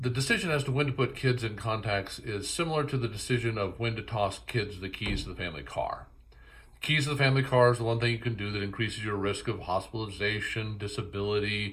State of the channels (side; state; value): both; identical; correlation 1.00